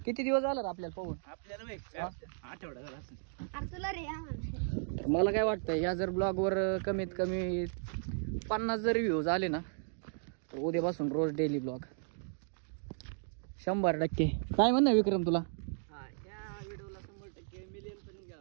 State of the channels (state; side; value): silent; left; digital silence